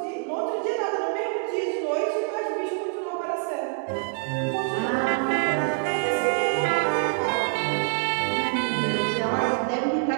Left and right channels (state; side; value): silent; left; 61 dB below the other